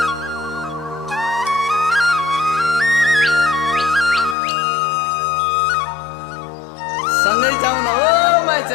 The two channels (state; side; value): drops out; right; at 4.4 s